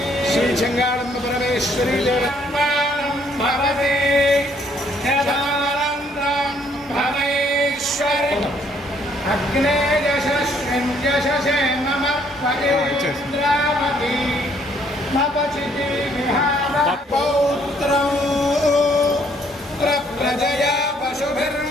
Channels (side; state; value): both; normal; correlation 0.66